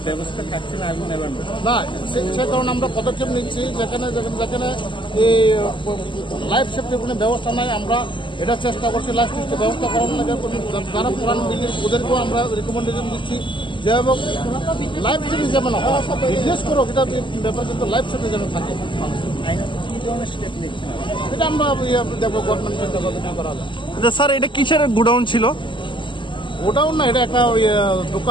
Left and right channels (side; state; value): right; late; 0.24 ms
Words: ব্যবস্থা থাকছে না আগুন নেভানোর। না, সে কারণে আমরা পদক্ষেপ নিচ্ছি। যেখানে এই লাইফ সেফটির কোনো ব্যবস্থা নাই, আমরা এটা চেষ্টা করছি লাইফ সেফটির ব্যবস্থা করার লাগে। যারা পুরান বিল্ডিং ওদেরকেও আমরা রিকমেন্ডেশন দিচ্ছি যে লাইফ সেফটি যেমন বিজনেস করো, এটা ব্যাপার, কিন্তু লাইফ সেফটি যেন থাকে। এটা আমরা দেখবো গভর্নমেন্টের করা যায়। আচ্ছা স্যার, এটা কিসের গোডাউন ছিল? গোডাউন না, এটা একটা